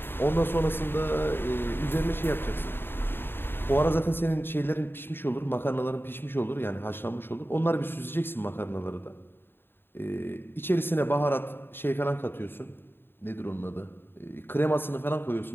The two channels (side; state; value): right; late; 0.10 ms